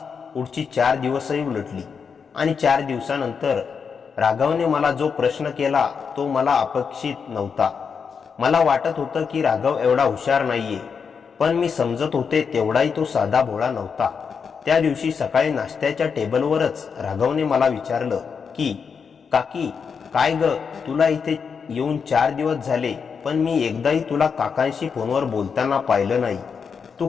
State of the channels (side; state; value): right; quieter; 6.1 dB